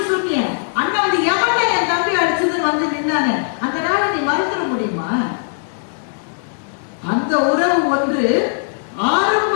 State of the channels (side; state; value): right; silent; digital silence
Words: சொன்னிய, அண்ணா வந்து எவன்டா என் தம்பி அடிச்சதுன்னு வந்து நின்னாங்க, அந்த நாளை நீ மறந்துட முடியுமா? அந்த உறவு ஒன்று